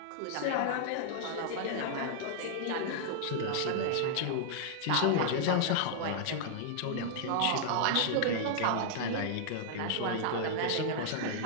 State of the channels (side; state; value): both; different; correlation -0.01